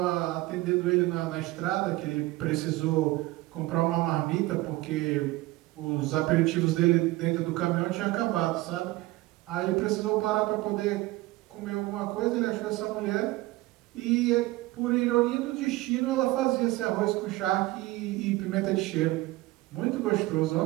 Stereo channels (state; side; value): quieter; left; 19.1 dB